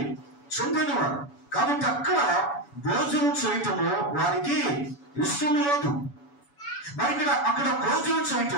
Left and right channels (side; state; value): right; late; 7.0 ms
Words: చెందినవారు కాబట్టి అక్కడ భోజనం చేయటము వారికి ఇష్టం లేదు. మరి అక్కడ భోజనం